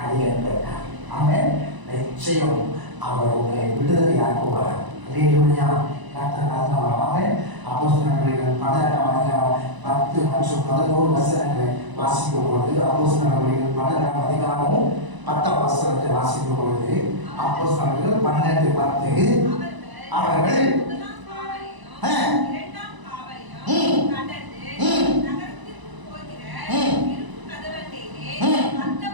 அடியேன். ஆமென். நிச்சயம் அவர் உங்களை விடுதலை வாசிக்கும் பொழுது அப்போஸ்தலர்கள் 12ஆம் அதிகாரமும் 10ஆம் வசனத்தை வாசிக்கும் பொழுது அப்போஸ்தலர்கள் 12:10 அவர்கள்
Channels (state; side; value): late; left; 1.0 ms